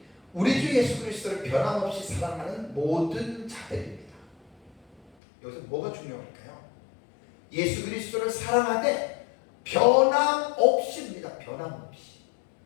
우리 주 예수 그리스도를 변함없이 사랑하는 모든 자들입니다. 여기서 뭐가 중요할까요? 예수 그리스도를 사랑하되 변함없이입니다. 변함없이.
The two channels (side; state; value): right; drops out; at 5.0 s